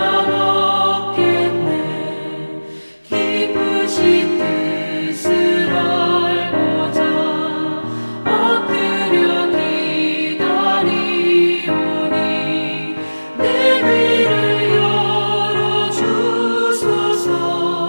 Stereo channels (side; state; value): both; inverted; correlation -1.00